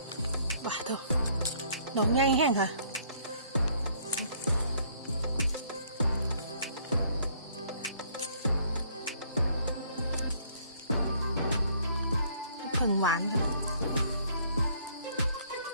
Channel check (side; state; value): both; inverted; correlation -0.62